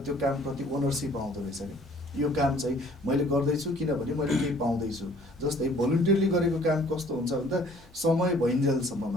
त्यो कामप्रति ओनरसिप आउँदो रहेछ कि यो काम चाहिँ मैले गर्दैछु किनभने मैले केही पाउँदैछु। जस्तै भोलिन्टियरली गरेको काम कस्तो हुन्छ भन्दा समय भइन्जेलसम्म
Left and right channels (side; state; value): both; normal; correlation 0.56